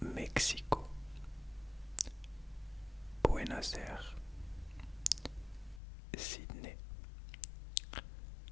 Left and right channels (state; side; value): drops out; right; at 5.8 s